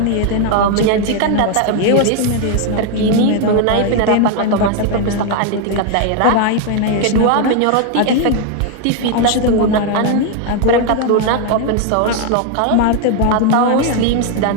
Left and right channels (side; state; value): both; different; correlation 0.01